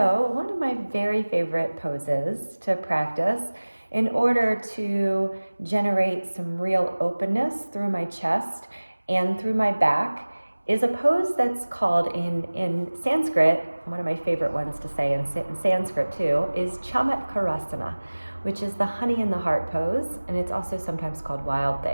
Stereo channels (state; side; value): inverted; both; correlation -1.00